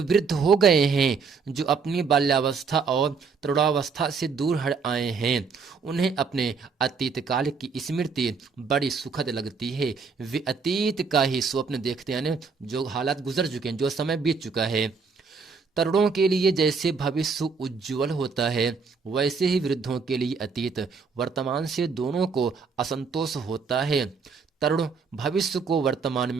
वृद्ध हो गए हैं, जो अपनी बाल्यावस्था और तरुणावस्था से दूर हट आए हैं, उन्हें अपने अतीत काल की स्मृति बड़ी सुखद लगती है। वे अतीत का ही स्वप्न देखते हैं, यानी जो हालात गुजर चुके हैं, जो समय बीत चुका है। तरुणों के लिए जैसे भविष्य उज्जवल होता है, वैसे ही वृद्धों के लिए अतीत वर्तमान से दोनों को असंतोष होता है। तरुण भविष्य को वर्तमान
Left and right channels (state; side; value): quieter; left; 5.2 dB